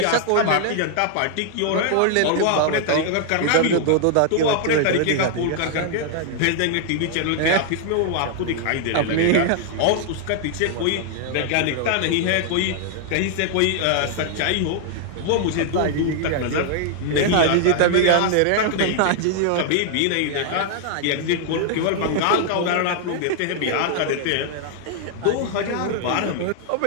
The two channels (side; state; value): both; different; correlation 0.00